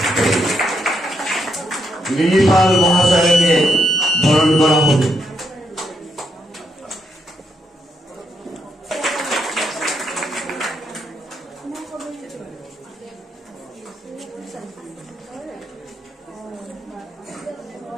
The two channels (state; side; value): normal; both; correlation 0.79